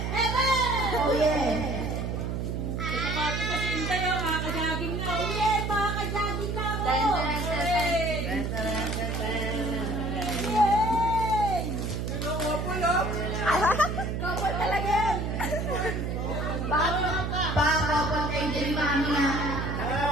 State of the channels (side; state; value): right; noise; hum, 2 dB below the sound